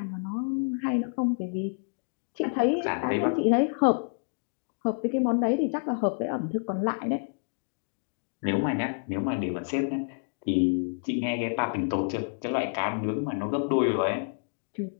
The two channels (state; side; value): silent; right; digital silence